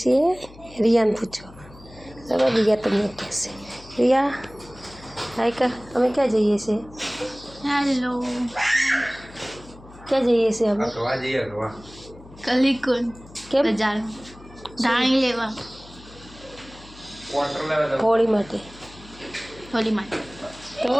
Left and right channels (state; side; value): noise; left; hum, 20 dB below the sound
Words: रिया ने पूछो। चलो रिया તમને કહેશે। रिया हाय कर, अमे क्या जईए छे? हेलो क्या जईए छे अमे? अगवा जी अगवा कलिकुन કેમ? બજાર ધાણી લેવા क्वार्टर लेवा दो હોળી માટે। હોલી માટે